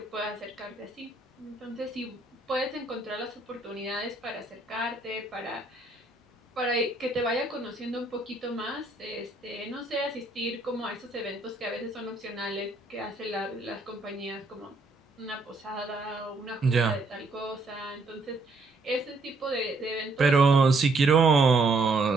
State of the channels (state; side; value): quieter; left; 3.2 dB